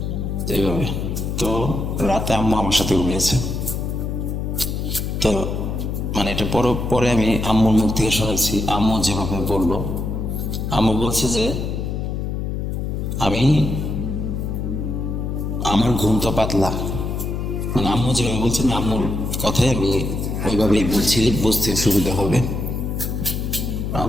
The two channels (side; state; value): left; noise; hum, 2 dB below the sound